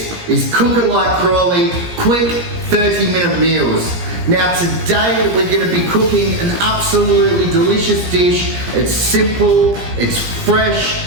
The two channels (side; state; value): left; late; 17 ms